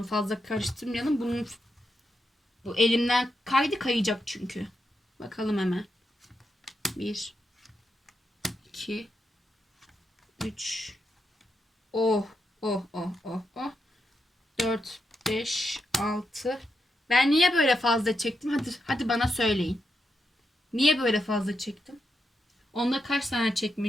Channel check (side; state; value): both; normal; correlation 0.85